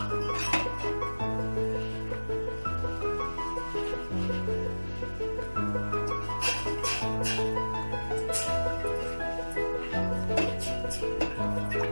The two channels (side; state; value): both; inverted; correlation -1.00